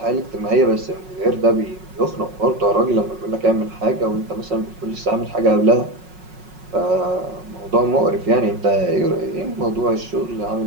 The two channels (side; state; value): left; late; 5.4 ms